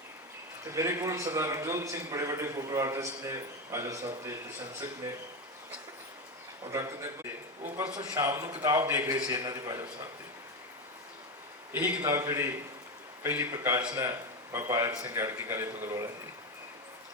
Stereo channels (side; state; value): both; normal; correlation 0.14